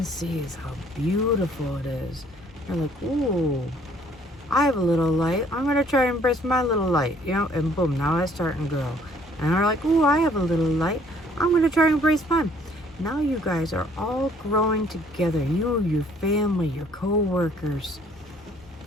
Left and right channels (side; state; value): both; normal; correlation 0.61